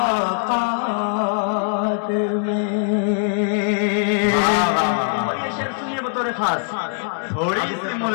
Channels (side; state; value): right; silent; digital silence